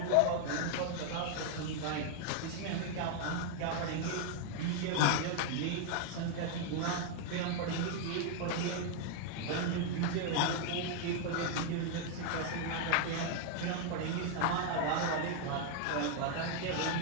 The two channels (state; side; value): different; both; correlation 0.00